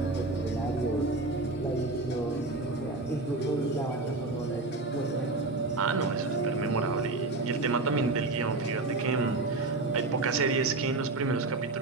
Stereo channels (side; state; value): left; quieter; 3.2 dB